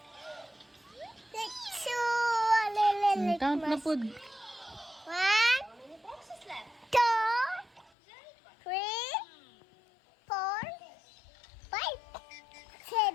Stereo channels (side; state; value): right; drops out; at 7.9 s